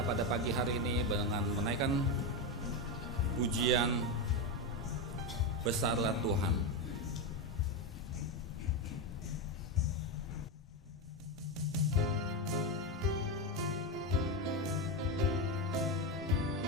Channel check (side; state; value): both; normal; correlation 0.11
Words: pada pagi hari ini dengan menaikkan pujian Besarlah Tuhan.